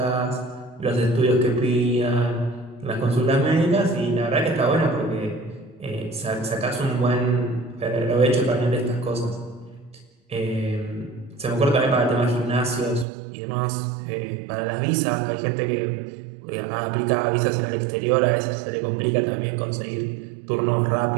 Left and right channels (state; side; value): drops out; left; at 13.1 s